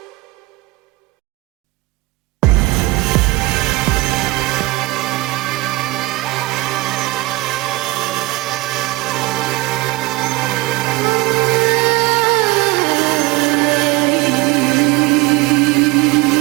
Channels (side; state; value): left; quieter; 21.2 dB